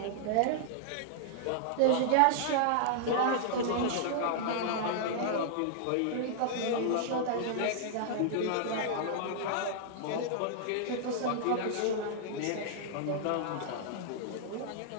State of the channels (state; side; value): different; both; correlation -0.01